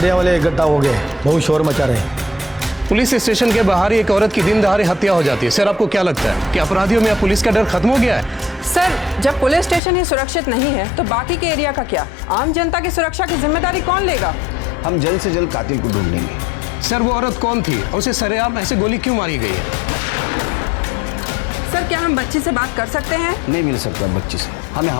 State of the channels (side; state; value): right; drops out; at 9.8 s